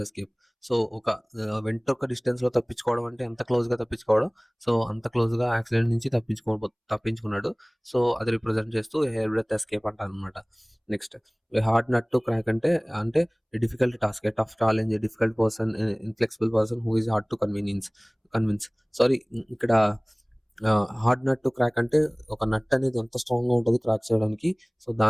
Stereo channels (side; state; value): both; identical; correlation 1.00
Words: ఎస్కేప్. సో ఒక వెంట్రుక డిస్టెన్స్ లో తప్పించుకోవడం అంటే ఎంత క్లోజ్ గా తప్పించుకోవడం. సో అంత క్లోజ్ గా యాక్సిడెంట్ నుంచి తప్పించుకున్నాడు. సో అది రిప్రజెంట్ చేస్తూ హెయిర్ బ్రెత్ ఎస్కేప్ అంటారు అనమాట. Next hard nut to crack అంటే difficult task, tough challenge, difficult person, inflexible person who is hard to convince. Sorry, ఇక్కడ హార్డ్ నట్ టు క్రాక్ అంటే ఒక నట్ అనేది ఎంత స్ట్రాంగ్ గా ఉంటుంది క్రాక్ చేయడానికి. సో